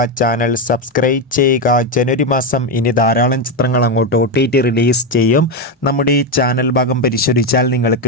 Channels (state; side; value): normal; both; correlation 0.09